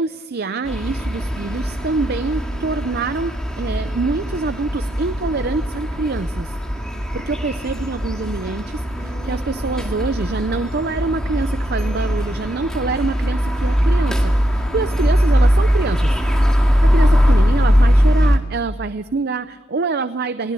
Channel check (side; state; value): both; normal; correlation 0.81